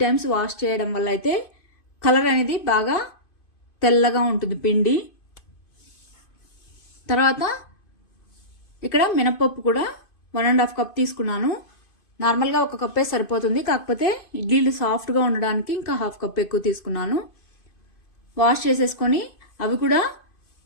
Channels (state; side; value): late; right; 2.5 ms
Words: టైమ్స్ వాష్ చేయడం వల్ల అయితే కలర్ అనేది బాగా తెల్లగా ఉంటుంది పిండి. తర్వాత ఇక్కడ మినపప్పు కూడా 1.5 కప్ తీసుకున్నాను. నార్మల్గా 1 కప్పే సరిపోతుంది, కాకపోతే ఇడ్లీలు సాఫ్ట్గా ఉండడానికి ఇంకా 1/2 కప్ ఎక్కువ తీసుకున్నాను. వాష్ చేసేసుకొని అవి కూడా